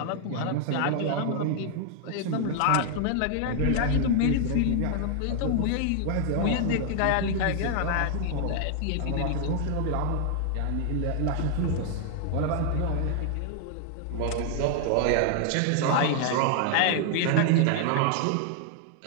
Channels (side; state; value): both; different; correlation 0.00